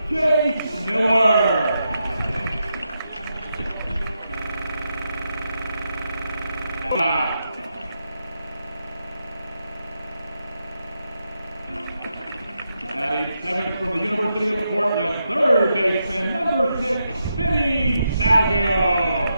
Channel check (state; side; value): inverted; both; correlation -0.84